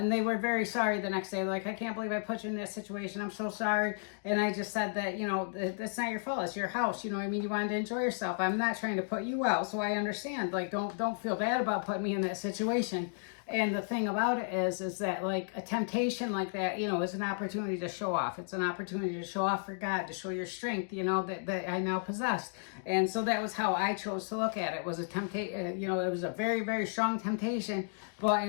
they were very sorry the next day. Like, I can't believe I put you in this situation. I'm so sorry. And I just said that, you know, that's not your fault. It's your house. You know what I mean? You wanted to enjoy yourself. I'm not trying to put you out, so I understand. Like, don't feel bad about putting me in that situation. And the thing about it is that, like, a temptation like that, you know, is an opportunity to show off. It's an opportunity to show off for God, to show your strength, you know, that I now possess. And so that was how I chose to look at it. It was a temptation, you know, it was a very strong temptation, but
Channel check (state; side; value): silent; right; digital silence